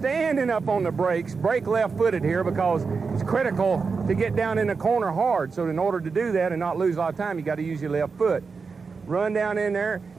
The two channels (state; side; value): quieter; left; 4.9 dB